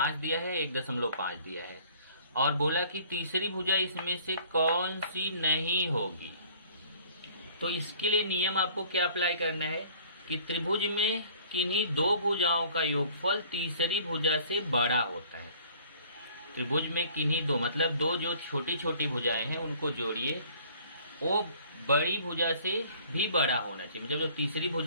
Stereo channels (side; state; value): both; inverted; correlation -0.53